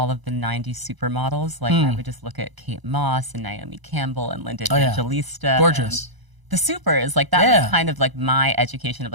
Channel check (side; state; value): left; late; 1.0 ms